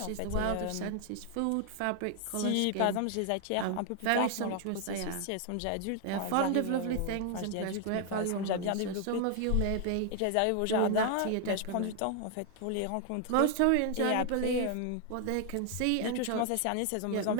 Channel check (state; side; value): different; both; correlation 0.00